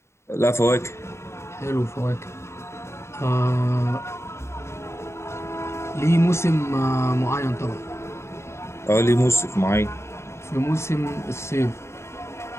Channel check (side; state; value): right; late; 0.13 ms